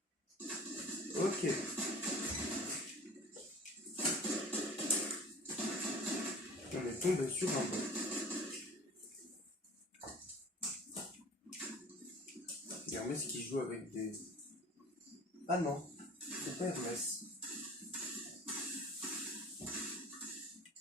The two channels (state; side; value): normal; both; correlation 0.44